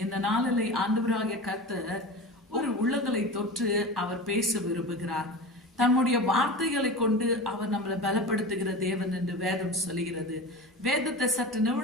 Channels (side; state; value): both; normal; correlation 0.30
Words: இந்த நாளில் ஆண்டவராகிய கர்த்தர் ஒரு உள்ளங்களை தொற்று அவர் பேச விரும்புகிறார். தம்முடைய வார்த்தைகளை கொண்டு அவர் நம்மளை பலப்படுத்துகிற தேவன் என்று வேதம் சொல்லுகிறது. வேதத்தை சற்று